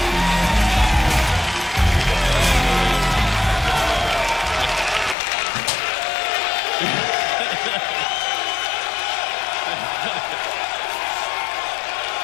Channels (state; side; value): drops out; right; at 5.2 s